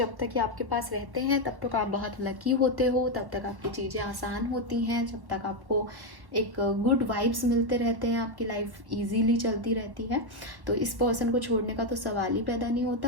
तक ये आपके पास रहते हैं तब तक आप बहुत लकी होते हो, तब तक आपकी चीज़ें आसान होती हैं, जब तक आपको एक गुड वाइब्स मिलते रहते हैं, आपकी लाइफ इजीली चलती रहती है। तो इस पर्सन को छोड़ने का तो सवाल ही पैदा नहीं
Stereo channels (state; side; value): late; left; 1.1 ms